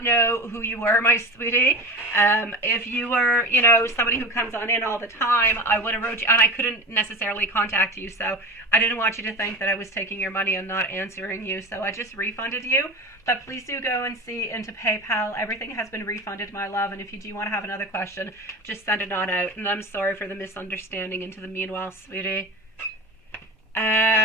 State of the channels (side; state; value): both; normal; correlation 0.28